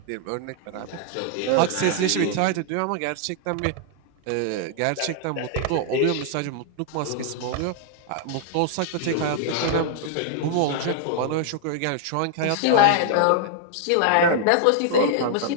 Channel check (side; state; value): both; different; correlation 0.00